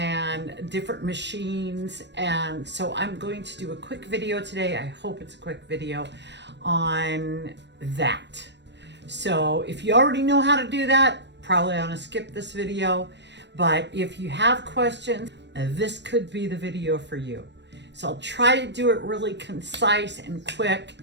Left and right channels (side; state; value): left; late; 0.51 ms